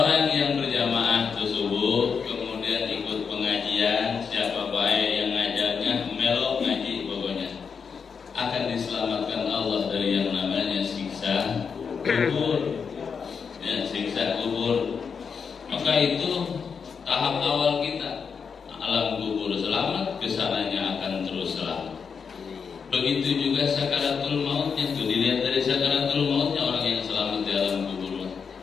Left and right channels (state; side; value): quieter; right; 6.1 dB